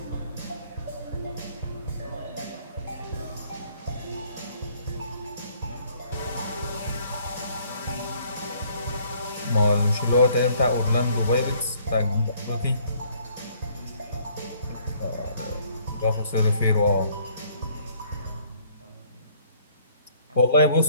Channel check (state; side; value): inverted; both; correlation -0.61